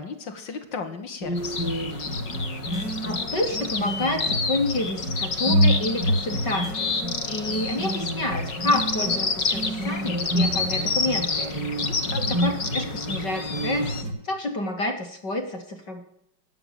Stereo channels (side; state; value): right; late; 5.4 ms